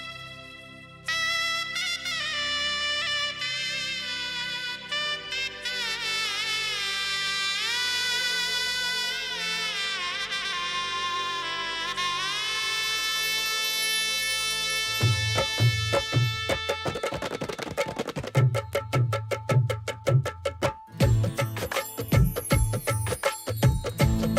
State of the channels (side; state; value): both; identical; correlation 1.00